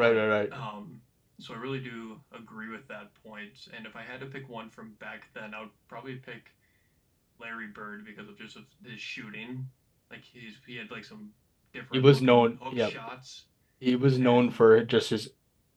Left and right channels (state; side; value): identical; both; correlation 1.00